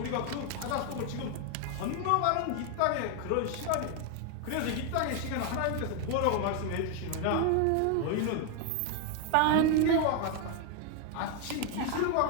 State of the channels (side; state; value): both; different; correlation 0.01